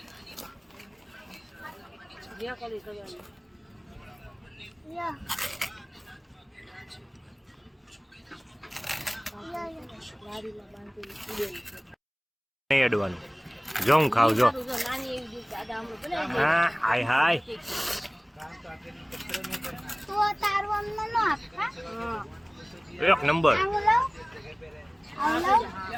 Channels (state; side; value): identical; both; correlation 1.00